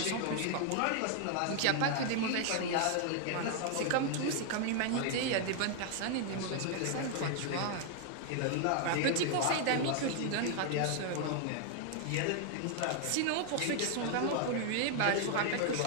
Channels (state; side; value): different; both; correlation 0.00